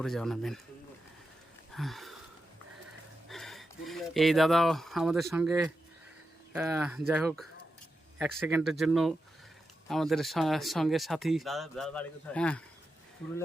জানাবেন। এই দাদা আমাদের সঙ্গে, যাই হোক, এক সেকেন্ডের জন্য আমাদের সঙ্গে সাথী। হ্যাঁ,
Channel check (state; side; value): normal; both; correlation 0.89